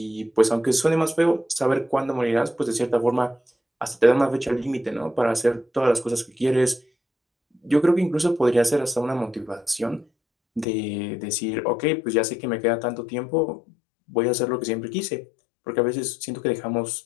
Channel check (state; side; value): drops out; right; at 10.7 s